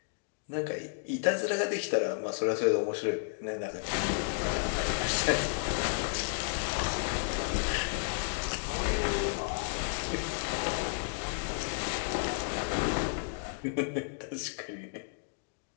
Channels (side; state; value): right; silent; digital silence